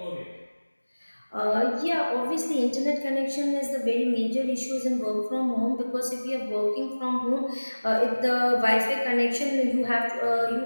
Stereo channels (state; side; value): inverted; both; correlation -1.00